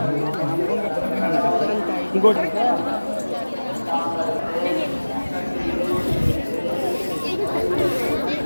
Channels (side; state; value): both; inverted; correlation -1.00